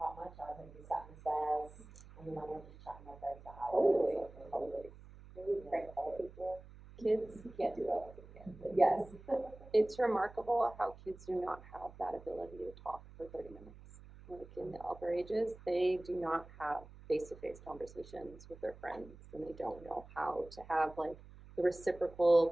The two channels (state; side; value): noise; right; hum, 19 dB below the sound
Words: of my childhood was sat on the stairs, and then I went to chat with my friends for Totally. hours. Totally. Maybe prank call people. Kids, You can't do that with a kid, but yes. it's remarkable how kids do not have that ability to talk for 30 minutes. Like in the upper ages, they do not have face-to-face conversations with their friends and they don't know how to have like the reciprocal